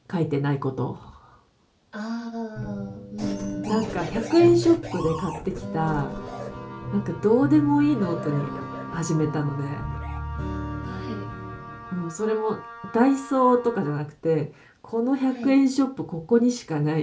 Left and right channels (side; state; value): both; identical; correlation 1.00